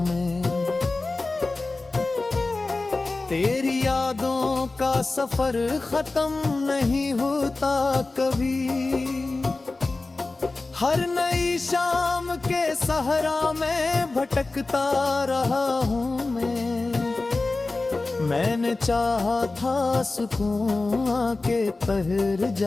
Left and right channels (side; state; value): right; quieter; 3.4 dB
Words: मैं। तेरी यादों का सफर खत्म नहीं होता कभी, हर नई शाम के सहरा में भटकता रहा हूँ मैं। मैंने चाहा था सुकून आके ठहर